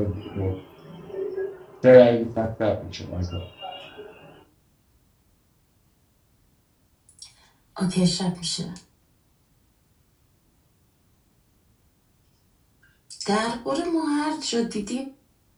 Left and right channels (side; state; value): both; identical; correlation 1.00